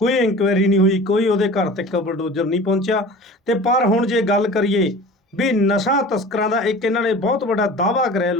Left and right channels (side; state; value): both; normal; correlation 0.39